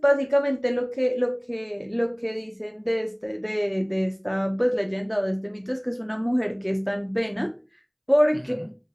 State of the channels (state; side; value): identical; both; correlation 1.00